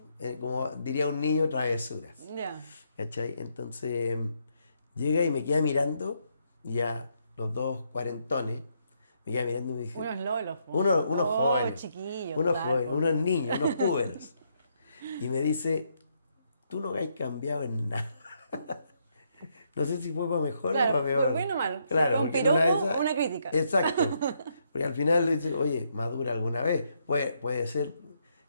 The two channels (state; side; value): inverted; both; correlation -0.76